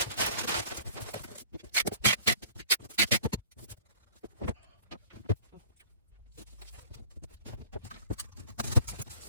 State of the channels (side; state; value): both; inverted; correlation -0.50